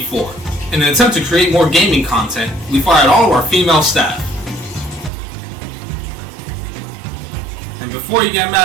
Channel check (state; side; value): drops out; left; at 5.1 s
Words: In an attempt to create more gaming content, we fired all of our female staff. And before you get